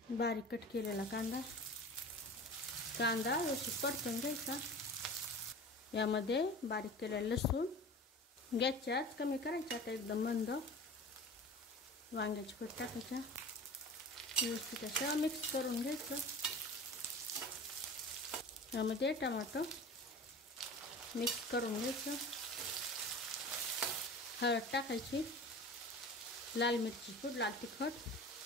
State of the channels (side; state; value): both; normal; correlation 0.37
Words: बारीक कट केलेला कांदा व्यवस्थित परतून घ्यायचा. यामध्ये बारीक केलेलं लसूण, गॅसची आच कमी करायची. आता एकदम मंद वांग्याची फोड टाकायच्या. व्यवस्थित असं मिक्स करून घ्यायचं. यामध्ये टमाटर मिक्स करून घ्यायचं. हळद टाकायची, लाल मिरची पूड, लाल तिखट.